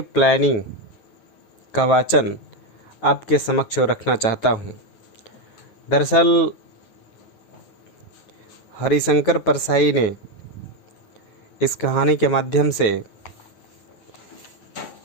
प्लानिंग का वाचन आपके समक्ष रखना चाहता हूँ। दरअसल हरिशंकर परसाई ने इस कहानी के माध्यम से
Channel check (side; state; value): right; late; 9.3 ms